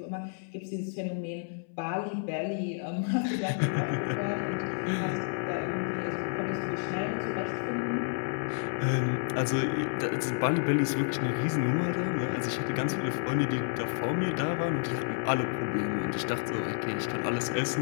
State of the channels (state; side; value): silent; right; 58 dB below the other